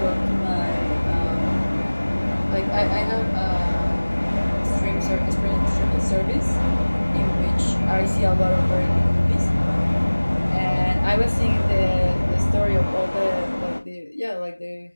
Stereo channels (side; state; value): both; inverted; correlation -1.00